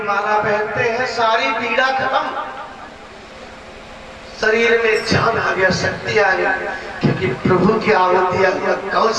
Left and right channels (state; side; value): identical; both; correlation 1.00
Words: माला पहनते हैं, सारी पीड़ा खत्म, शरीर में जान आ गया, शक्ति आ गई, क्योंकि प्रभु की आहुति हुआ